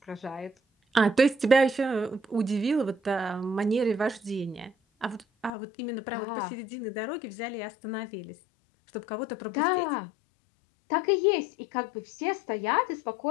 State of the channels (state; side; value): drops out; right; at 5.5 s